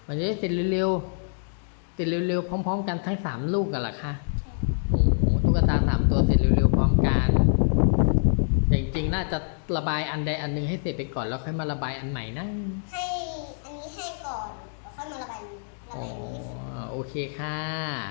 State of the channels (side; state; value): right; silent; digital silence